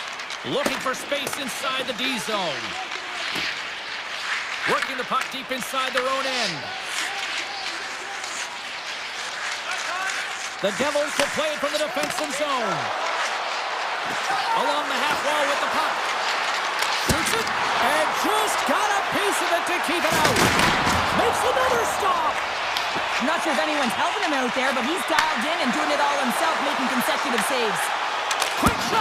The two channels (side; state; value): both; identical; correlation 1.00